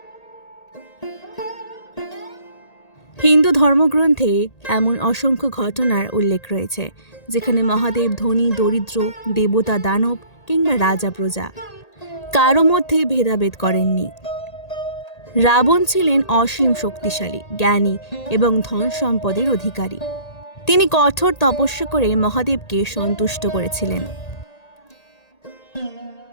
হিন্দু ধর্মগ্রন্থে এমন অসংখ্য ঘটনার উল্লেখ রয়েছে যেখানে মহাদেব ধনী, দরিদ্র, দেবতা, দানব কিংবা রাজা, প্রজা কারো মধ্যে ভেদাভেদ করেননি। রাবণ ছিলেন অসীম শক্তিশালী, জ্ঞানী এবং ধন সম্পদের অধিকারী। তিনি কঠোর তপস্যা করে মহাদেবকে সন্তুষ্ট করেছিলেন।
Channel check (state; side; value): late; right; 1.8 ms